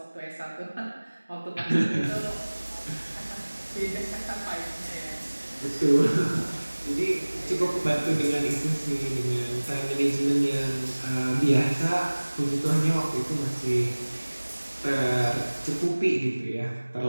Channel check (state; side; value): inverted; both; correlation -1.00